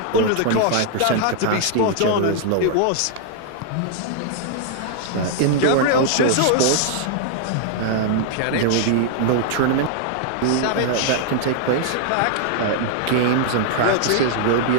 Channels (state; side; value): different; both; correlation 0.00